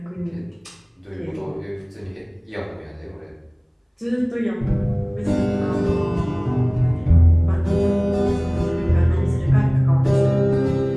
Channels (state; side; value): identical; both; correlation 1.00